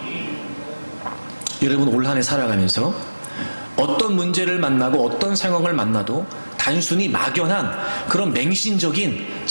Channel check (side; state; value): both; inverted; correlation -1.00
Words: 여러분, 올 한 해 살아가면서 어떤 문제를 만나고 어떤 상황을 만나도 단순히 막연한 그런 맹신적인